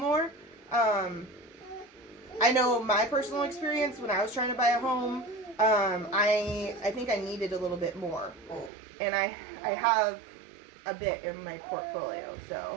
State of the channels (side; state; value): left; drops out; at 8.7 s